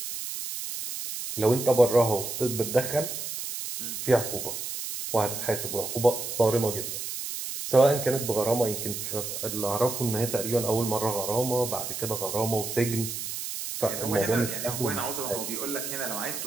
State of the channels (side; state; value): right; noise; hiss, 6 dB below the sound